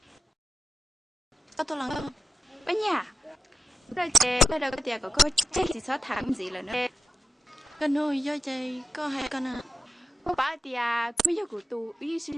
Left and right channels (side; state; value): both; normal; correlation 0.88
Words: Có tôi làm không? Anh nhà. Rồi chị, bây giờ có tiền có chết thì xóa thẳng gì là nữa. Con nuôi do chạy có hai con à. Có bà thì bây giờ của tụ ý xin